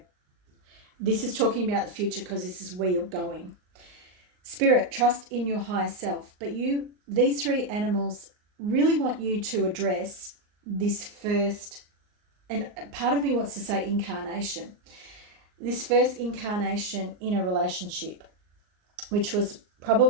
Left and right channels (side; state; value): left; late; 39 ms